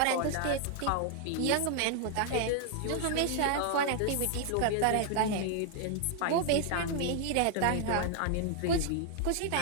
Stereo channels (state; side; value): different; both; correlation 0.00